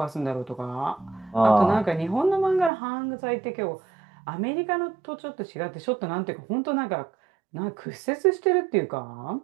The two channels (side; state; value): left; drops out; at 2.7 s